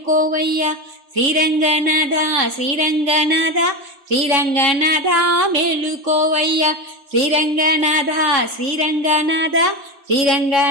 శ్రీరంగనాథ శ్రీరంగనాథ శ్రీరంగనాథ మేలుకోవయ్యా శ్రీరంగనాథ శ్రీరంగనాథ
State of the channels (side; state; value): left; late; 3.6 ms